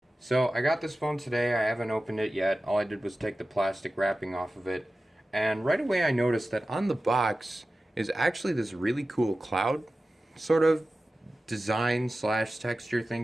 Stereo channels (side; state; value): both; normal; correlation 0.95